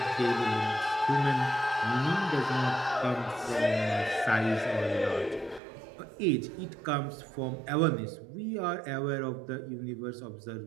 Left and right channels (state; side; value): drops out; left; at 5.6 s